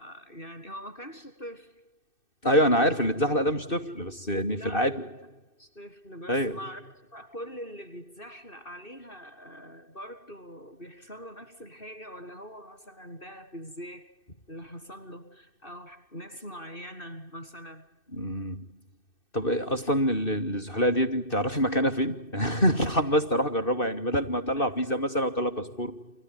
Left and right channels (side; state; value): right; late; 2.6 ms